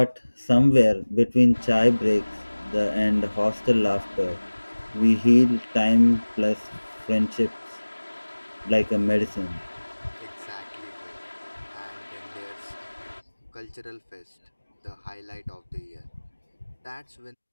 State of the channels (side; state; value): both; inverted; correlation -1.00